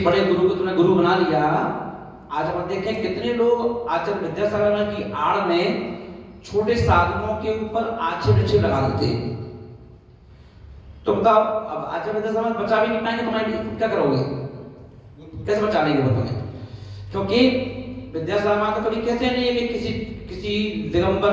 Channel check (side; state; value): both; identical; correlation 1.00